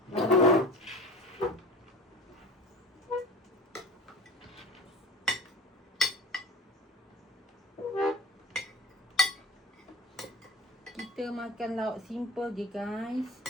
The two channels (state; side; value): normal; both; correlation 0.37